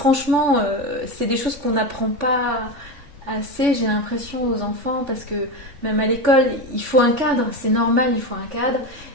c'est des choses qu'on n'apprend pas assez, j'ai l'impression, aux enfants, parce que même à l'école il faut un cadre, c'est normal, il faut un cadre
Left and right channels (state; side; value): late; left; 3.5 ms